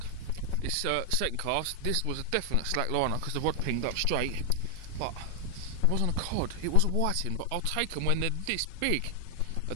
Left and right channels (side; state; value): both; different; correlation 0.00